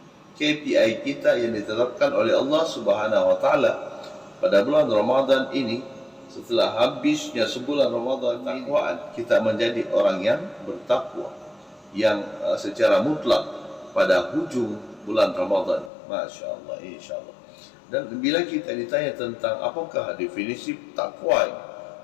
KPI kita yang ditetapkan oleh Allah Subhanahu wa taala pada bulan Ramadan ini. Setelah habisnya sebulan Ramadan, takwaan kita menjadi orang yang bertakwa, yang secara mutlak pada hujung bulan Ramadan. Masya Allah, insya Allah. Dan bila kita ditanya tentang apakah definisi takwa,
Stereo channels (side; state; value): right; drops out; at 15.9 s